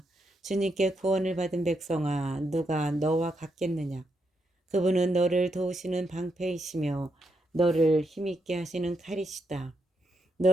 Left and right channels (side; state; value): both; normal; correlation 0.81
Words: 주님께 구원을 받은 백성아, 누가 너와 같겠느냐. 그분은 너를 도우시는 방패이시며 너를 힘있게 하시는 칼이시다.